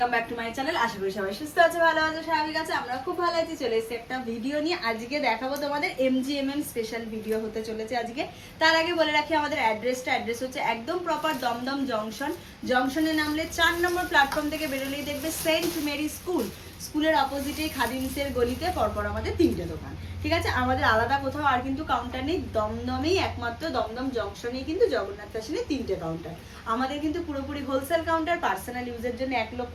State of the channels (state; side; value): identical; both; correlation 1.00